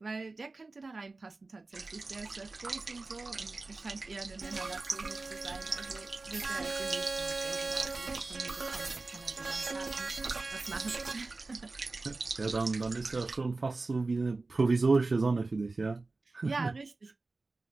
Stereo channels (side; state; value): left; quieter; 3.5 dB